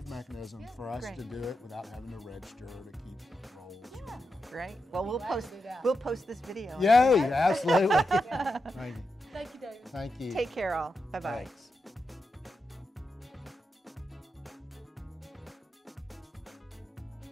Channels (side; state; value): both; normal; correlation 0.87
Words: mechanism for us to do it without having to register or to keep rolls. Yeah. Great. Well, we'll post this video. Yay! Absolutely. Thank you. Thank you, David. Thank you. Take care, all. Bye-bye. Thanks.